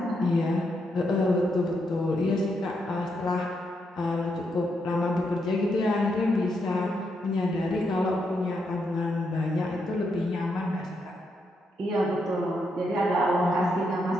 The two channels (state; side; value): normal; both; correlation 0.80